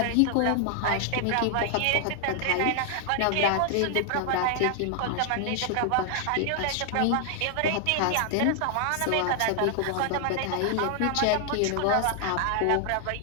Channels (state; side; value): different; both; correlation 0.00